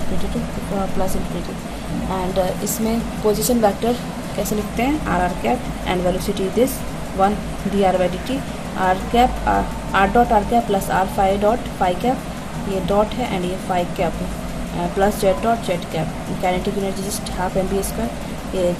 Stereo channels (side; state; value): both; identical; correlation 1.00